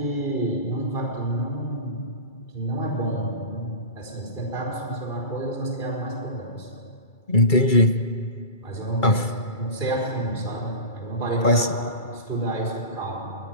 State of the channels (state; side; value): late; right; 2.3 ms